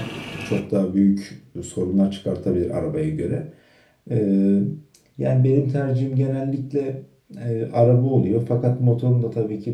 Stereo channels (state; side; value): identical; both; correlation 1.00